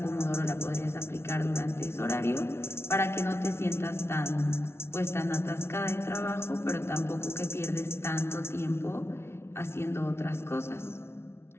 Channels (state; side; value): late; right; 0.12 ms